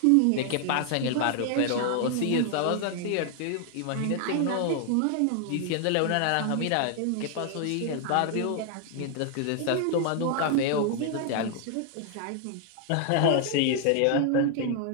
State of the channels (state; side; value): different; both; correlation 0.00